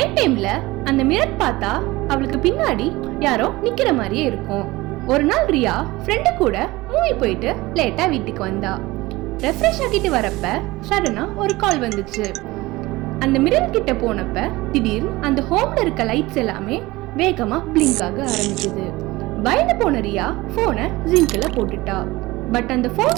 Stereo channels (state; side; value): quieter; left; 20.2 dB